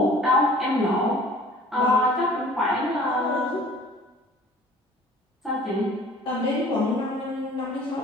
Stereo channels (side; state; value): both; normal; correlation 0.50